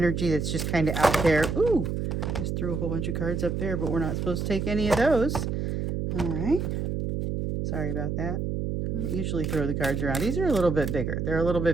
that's just kind of out there. Ooh, just threw a whole bunch of cards up there, but we're not supposed to take any of those. All right. Sorry about that. I don't usually throw the cards around. These are a little bit bigger. They're a little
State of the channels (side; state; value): right; noise; hum, 2 dB below the sound